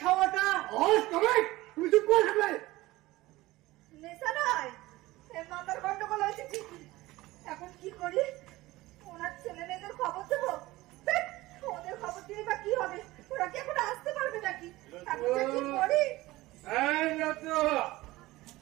খাওয়াটা? তুমি চুপ করে থাকবে। নেশা নয়, মাথার গন্ডগোল হয়েছে ঠিকই। এখন কি করি? ওনার ছেলে মেয়েদের খবর দেবো? ওদের খবর দিয়ে বা কি হবে? ওরা কি এখন আসতে পারবে নাকি? এখন যে কি করি?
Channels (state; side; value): quieter; left; 18.7 dB